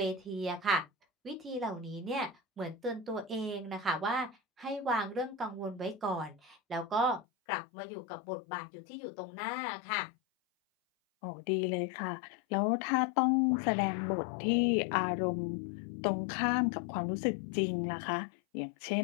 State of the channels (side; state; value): right; drops out; at 7.2 s